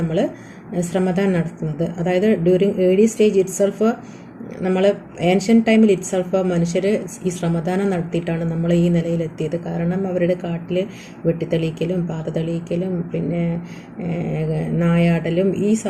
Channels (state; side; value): identical; both; correlation 1.00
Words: ശ്രമദാൻ നടത്തുന്നത്. അതായത് ഡ്യൂറിങ് ഏർലി സ്റ്റേജ് ഇറ്റ്സെൽഫ്, നമ്മൾ ഏൻഷ്യൻ്റ് ടൈമിൽ ഇറ്റ്സെൽഫ് മനുഷ്യർ ഈ ശ്രമദാനം നടത്തിയിട്ടാണ് നമ്മൾ ഈ നിലയിലെത്തിയത്. കാരണം അവരുടെ കാട്ടിൽ വെട്ടിത്തെളിയിക്കലും പാത തെളിയിക്കലും പിന്നെ നായാടലും ഈ